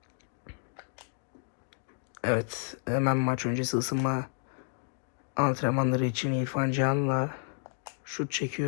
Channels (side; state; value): right; silent; 57 dB below the other